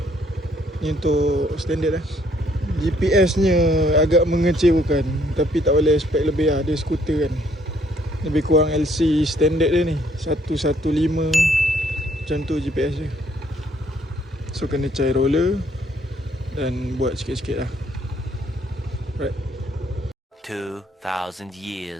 Ni untuk standard lah. GPS nya agak mengecewakan, tapi tak boleh expect lebih lah. Dia skuter kan, lebih kurang LC standard dia ni 115 macam tu GPS dia. So kena cair roller dan buat sikit-sikit lah. Right. 2000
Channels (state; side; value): normal; both; correlation 0.66